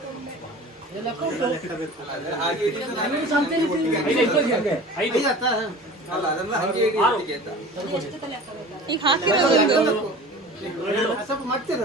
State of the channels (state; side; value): normal; both; correlation 0.39